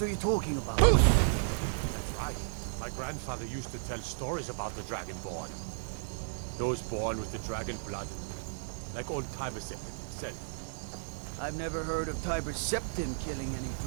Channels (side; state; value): left; silent; digital silence